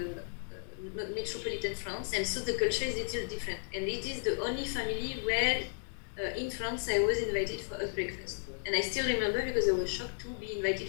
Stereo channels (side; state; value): right; silent; digital silence